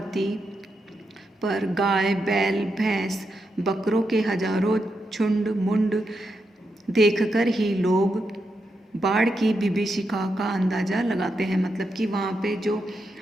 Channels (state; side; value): normal; both; correlation 0.85